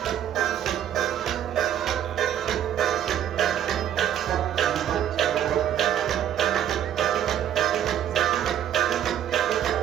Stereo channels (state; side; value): quieter; left; 10.4 dB